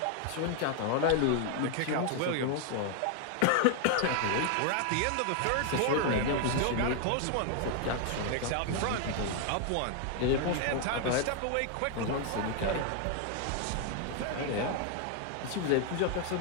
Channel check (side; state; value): both; different; correlation 0.00